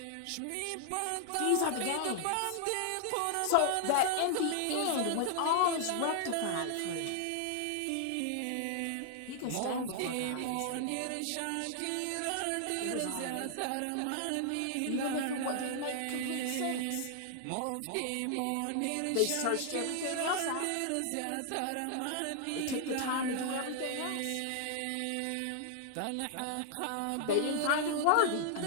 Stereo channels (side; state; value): both; different; correlation 0.00